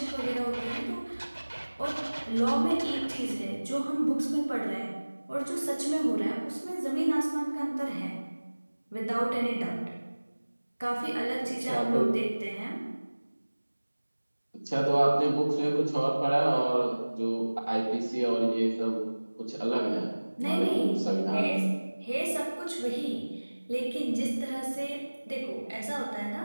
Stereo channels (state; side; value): inverted; both; correlation -1.00